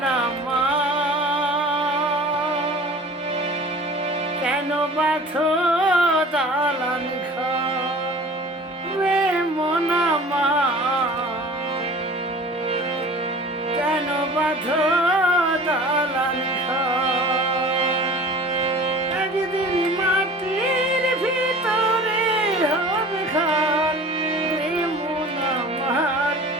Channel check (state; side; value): normal; both; correlation 0.43